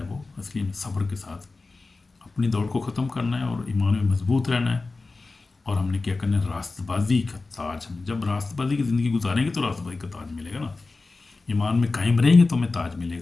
وہ اصلی میں صبر کے ساتھ اپنی دوڑ کو ختم کرنا ہے اور ایمان میں مضبوط رہنا ہے، اور ہم نے کیا کرنا ہے؟ راست بازی کا تاج۔ ہم جب راست بازی کی زندگی گزاریں گے تو راست بازی کا تاج ملے گا نا۔ ایمان میں قائم رہیں گے تو ہمیں تاج ملے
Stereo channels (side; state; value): right; quieter; 3.6 dB